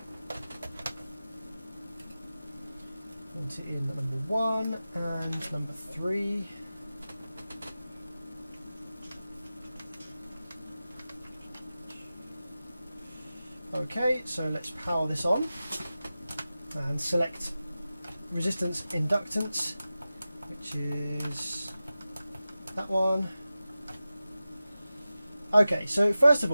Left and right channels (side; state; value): both; inverted; correlation -0.94